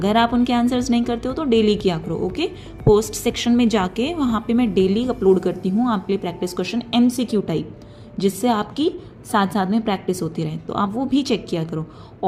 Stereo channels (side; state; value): both; identical; correlation 1.00